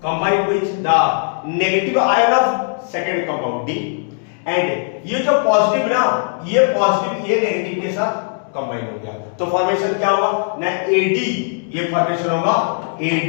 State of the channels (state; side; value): silent; right; 67 dB below the other